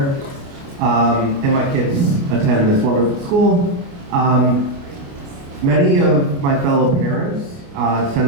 And my kids attend this wonderful school. Many of my fellow parents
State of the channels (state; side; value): late; left; 29 ms